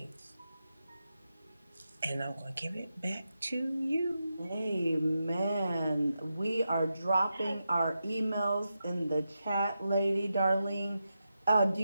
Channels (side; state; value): both; inverted; correlation -0.88